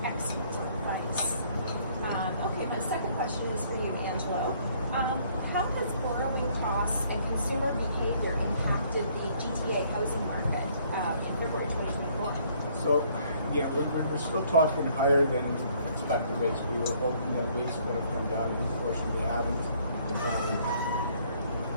excellent advice. Okay, my second question is for you, Angelo. How has borrowing costs and consumer behavior impacted the GTA housing market in February 2024? So, yeah, we're still talking higher than expected rates. We were hoping that rates would have come down, unfortunately they haven't.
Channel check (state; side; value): inverted; both; correlation -0.63